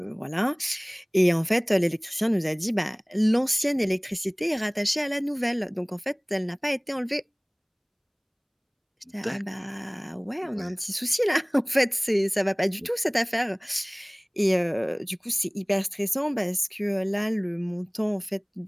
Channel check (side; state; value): both; identical; correlation 1.00